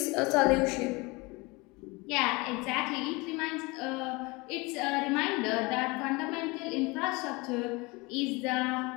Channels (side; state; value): right; quieter; 25.2 dB